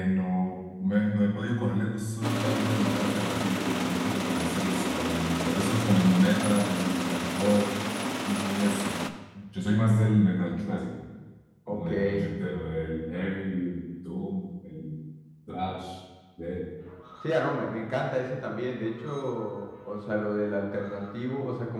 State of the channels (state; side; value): identical; both; correlation 1.00